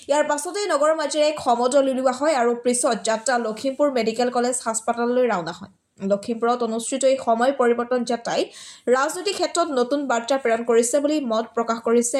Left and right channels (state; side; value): identical; both; correlation 1.00